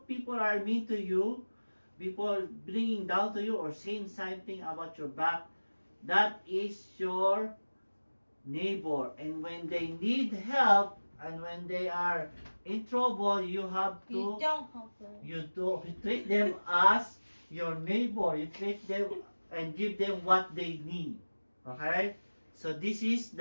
people are mean to you, people bringing down to you or saying something about your back, that is your neighbor. And when they need help and when they are in trouble, you have to, You don't help them. you treat them as your neighbor. You treat them and give them what they need. Okay? So this is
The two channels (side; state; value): both; inverted; correlation -1.00